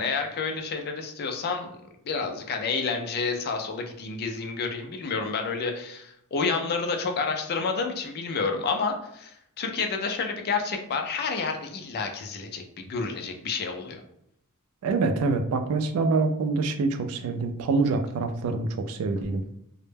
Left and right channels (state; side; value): normal; both; correlation 0.18